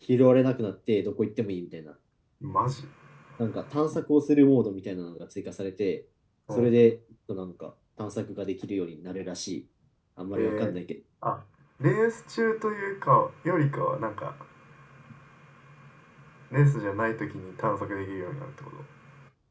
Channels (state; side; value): identical; both; correlation 1.00